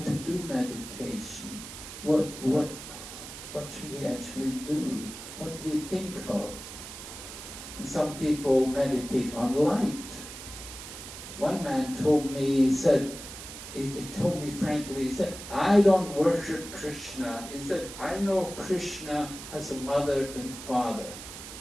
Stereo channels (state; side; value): noise; right; hiss, 12 dB below the sound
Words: do meditation. What should we actually do? What do we think of? And some people meditate on light. One man told me, he told me frankly, he said, I don't worship Krishna. He said, I know Krishna has a mother and father,